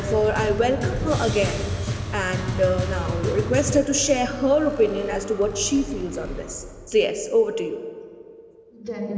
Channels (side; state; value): both; identical; correlation 1.00